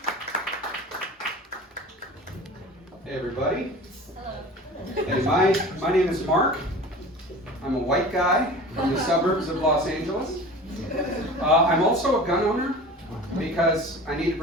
Hey everybody. Hey, my name is Mark. I'm a white guy from the suburbs of Los Angeles. I'm also a gun owner because I need to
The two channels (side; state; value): both; normal; correlation 0.38